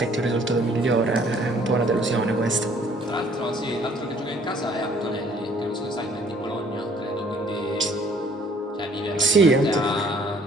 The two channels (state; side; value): normal; both; correlation 0.58